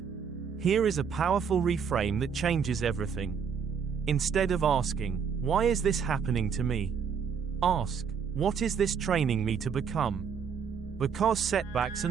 Here is a powerful reframe that changes everything. Instead of asking, why is this happening to me? Ask, what is this training me to become? Because setbacks are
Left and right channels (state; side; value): quieter; left; 6.7 dB